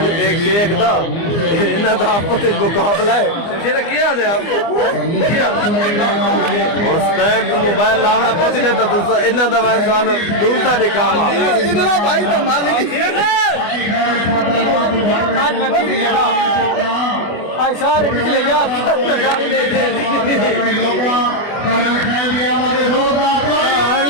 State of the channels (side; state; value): right; late; 24 ms